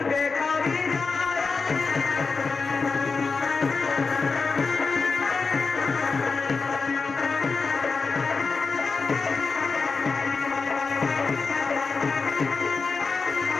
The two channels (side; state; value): right; quieter; 4.5 dB